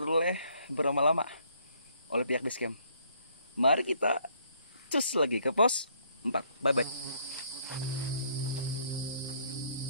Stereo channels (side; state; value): both; inverted; correlation -0.66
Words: berlama-lama oleh pihak base camp. Mari kita cus lagi ke pos 4. Bye bye.